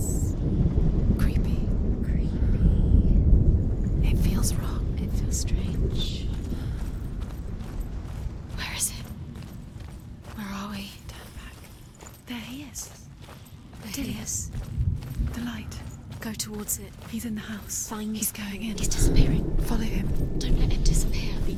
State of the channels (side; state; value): both; identical; correlation 1.00